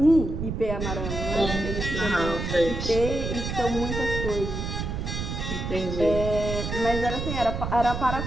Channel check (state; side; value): noise; right; rumble, 4 dB below the sound